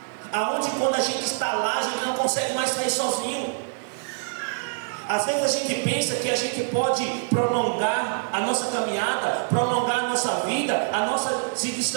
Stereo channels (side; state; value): left; silent; digital silence